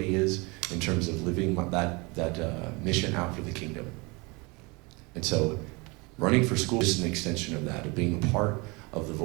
is in terms of living that mission out for the kingdom. And so running for school is an extension of that, of being a part of the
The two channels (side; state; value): left; quieter; 27.1 dB